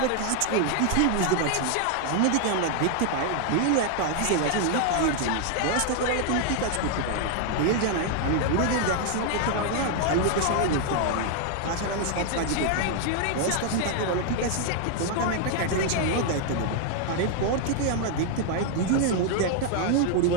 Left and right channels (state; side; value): different; both; correlation 0.00